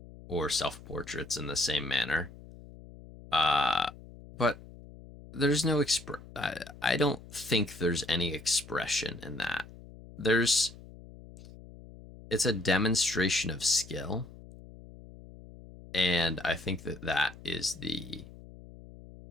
or self-portraits in the same manner. But there's no I don't think there's any expression in that. It's a demonstration of skill, and I think that is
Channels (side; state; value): left; noise; hum, 18 dB below the sound